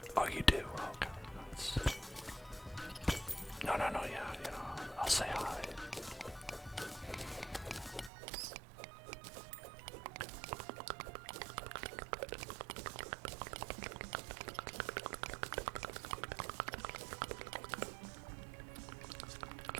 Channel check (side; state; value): left; drops out; at 8.1 s